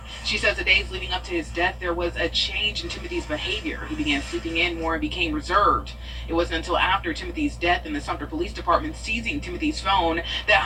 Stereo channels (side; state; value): both; identical; correlation 1.00